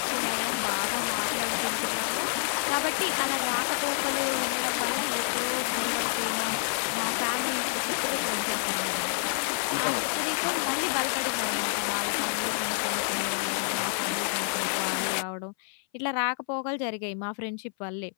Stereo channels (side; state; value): right; silent; 59 dB below the other